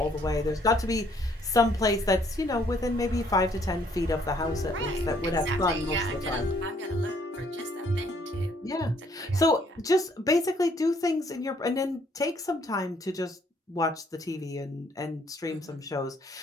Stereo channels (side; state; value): both; normal; correlation 0.65